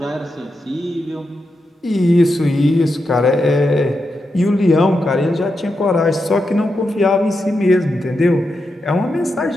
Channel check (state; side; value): normal; both; correlation 0.86